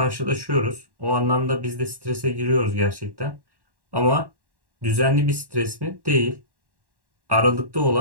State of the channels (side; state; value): left; late; 1.1 ms